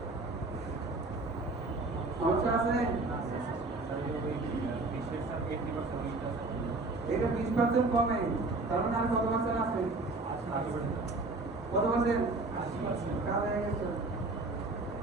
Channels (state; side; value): quieter; left; 3.3 dB